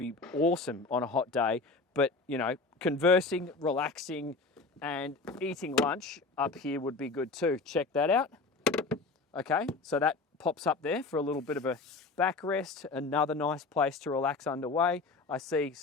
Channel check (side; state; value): right; quieter; 3.8 dB